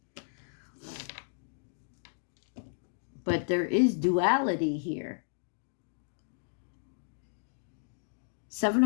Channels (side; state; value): right; silent; digital silence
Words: But there is duality here. Seven